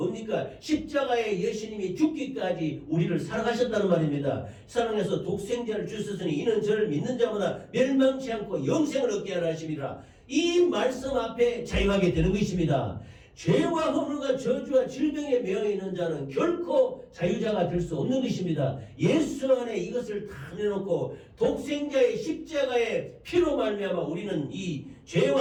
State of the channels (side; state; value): both; identical; correlation 1.00